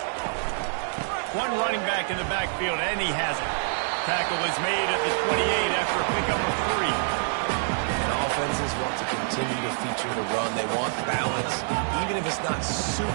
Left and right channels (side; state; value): left; silent; 61 dB below the other